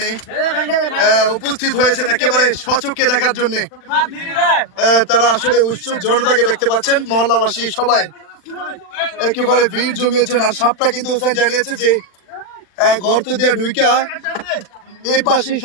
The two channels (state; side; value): late; right; 40 ms